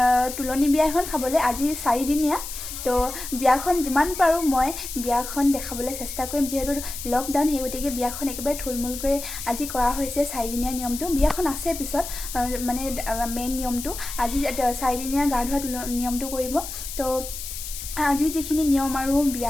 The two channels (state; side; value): noise; left; hiss, 9 dB below the sound